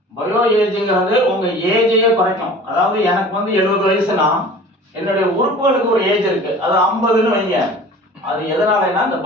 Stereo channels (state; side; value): normal; both; correlation 0.43